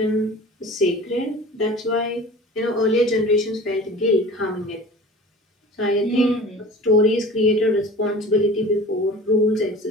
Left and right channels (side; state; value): both; normal; correlation 0.40